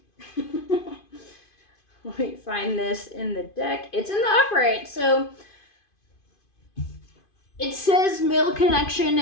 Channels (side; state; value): right; late; 2.5 ms